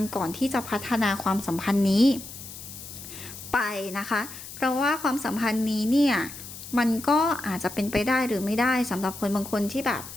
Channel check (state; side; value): noise; left; hiss, 13 dB below the sound